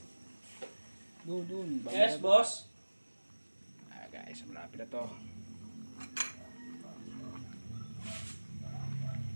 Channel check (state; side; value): inverted; both; correlation -1.00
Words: Doon. Yes, boss. Ah guys, malapit na to.